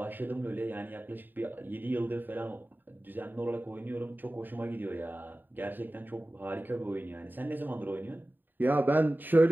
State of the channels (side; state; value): left; late; 0.091 ms